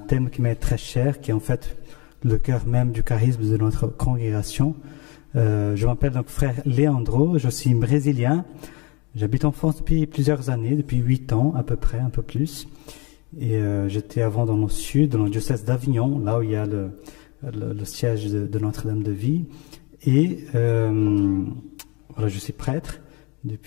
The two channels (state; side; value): quieter; right; 29.1 dB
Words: qui m'est très cher, qui est en fait le cœur même du charisme de notre congrégation. Je m'appelle donc frère Leandro, je suis brésilien. J'habite en France depuis plusieurs années, depuis 8 ans à peu près, un peu plus. Et j'étais avant dans le sud, dans le diocèse d'Avignon, là où il y a le siège de Notre-Dame de Vie. Et voilà, je suis prêtre